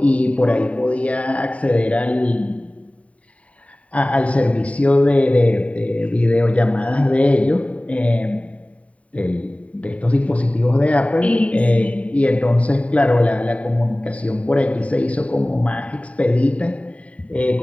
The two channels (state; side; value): late; right; 0.066 ms